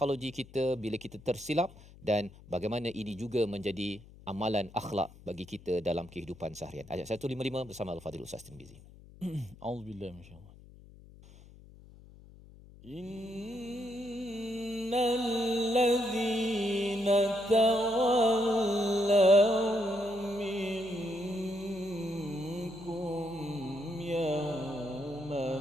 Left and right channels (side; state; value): left; noise; hum, 21 dB below the sound